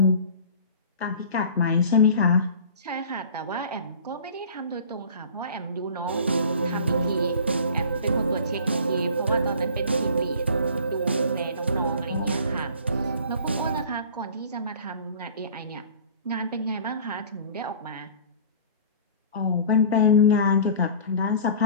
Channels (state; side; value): inverted; both; correlation -0.43